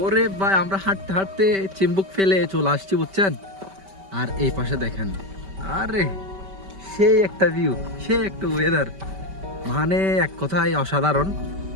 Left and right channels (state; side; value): late; left; 5.2 ms